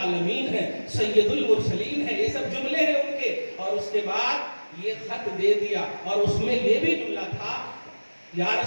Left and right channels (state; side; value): inverted; both; correlation -1.00